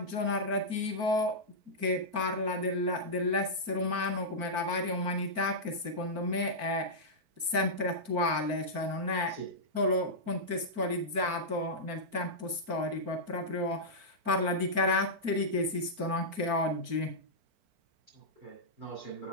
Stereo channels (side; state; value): left; late; 4.4 ms